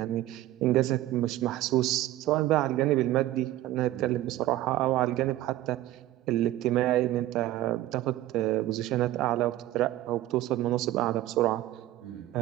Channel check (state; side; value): quieter; left; 15.0 dB